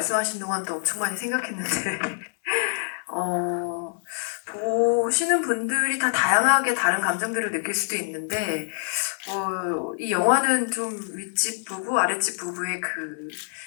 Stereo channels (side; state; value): right; silent; digital silence